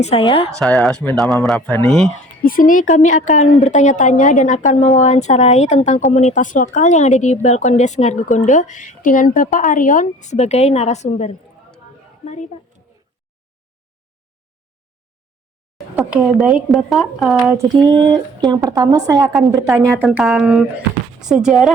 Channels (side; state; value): both; normal; correlation 0.49